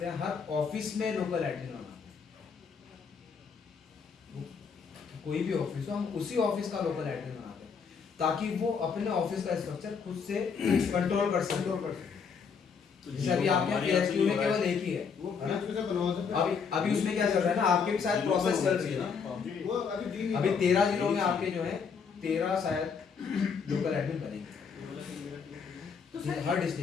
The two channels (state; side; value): quieter; right; 6.0 dB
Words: हैं, हर ऑफिस में लोकल एडमिन बनाते हैं। कोई भी ऑफिस हो, हम उसी ऑफिस का लोकल एडमिन बनाते हैं ताकि वो अपने ऑफिस का स्ट्रक्चर खुद से कंट्रोल कर सके। जैसे अभी आपके यहाँ पीएचक्यू में केवल एक ही है, वो है ना? PHQ से बनवा सकते हैं। अभी उसमें क्या चल रहा है ना, आपके भी शायद प्रोसेस चल रही है ना। वो अभी अभी 13 जिलों में आपके जो है 13 शायद लोकल एडमिन बनेंगे, तो सर हर